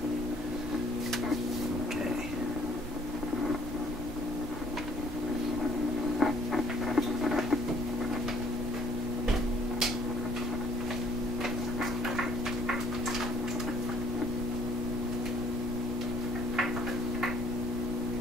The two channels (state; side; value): normal; both; correlation 0.61